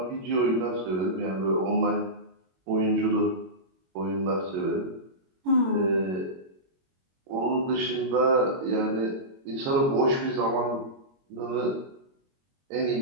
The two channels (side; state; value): left; late; 22 ms